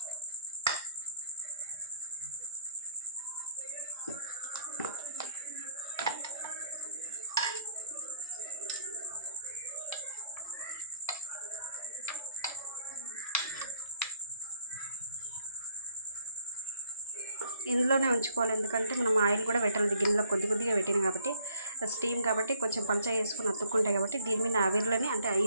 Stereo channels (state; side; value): inverted; both; correlation -0.59